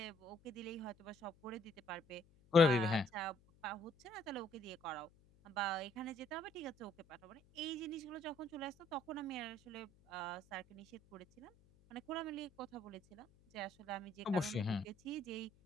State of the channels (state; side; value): noise; left; hum, 28 dB below the sound